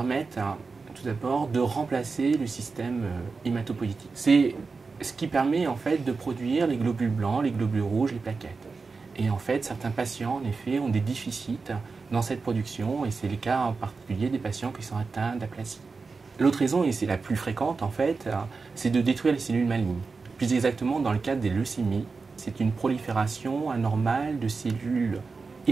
tout d'abord de remplacer le système hématopoïétique. C'est ce qui permet, en fait, de produire les globules blancs, les globules rouges, les plaquettes. Et en fait, certains patients, en effet, ont des déficits dans cette production, et c'est le cas en particulier des patients qui sont atteints d'aplasie. L'autre raison, et c'est la plus fréquente, en fait, c'est de détruire les cellules malignes. Plus exactement, dans le cadre des leucémies, c'est une prolifération anormale de cellules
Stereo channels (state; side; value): quieter; left; 4.5 dB